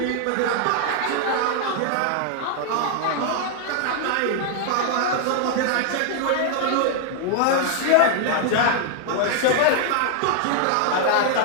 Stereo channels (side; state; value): both; different; correlation 0.00